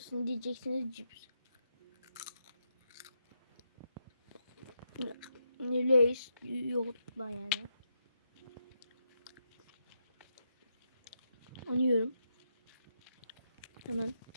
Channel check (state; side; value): inverted; both; correlation -0.82